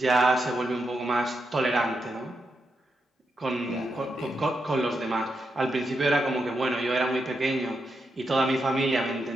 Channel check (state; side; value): normal; both; correlation 0.85